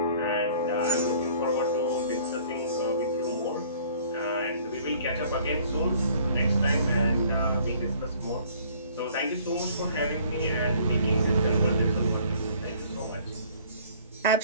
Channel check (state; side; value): inverted; both; correlation -0.55